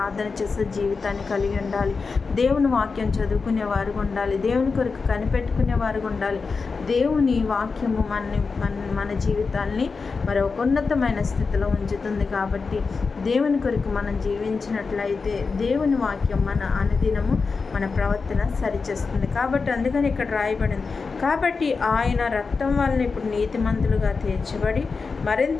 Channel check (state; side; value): quieter; right; 4.7 dB